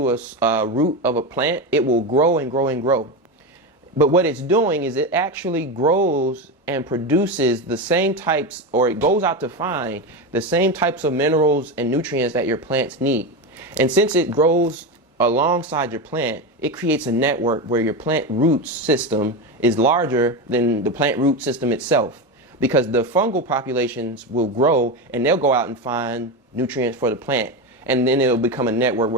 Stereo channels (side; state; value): both; normal; correlation 0.17